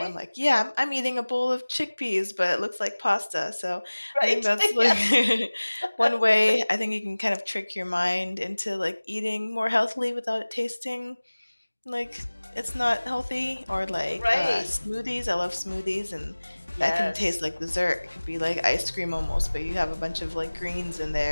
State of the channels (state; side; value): inverted; both; correlation -1.00